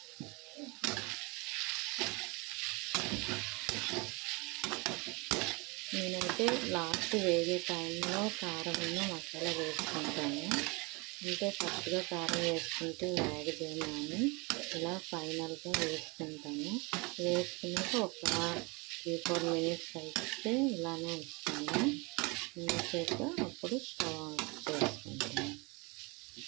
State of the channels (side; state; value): left; quieter; 28.2 dB